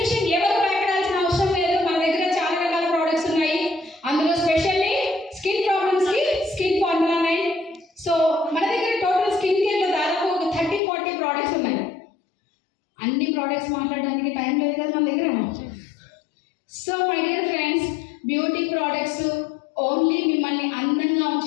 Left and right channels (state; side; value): drops out; right; at 10.8 s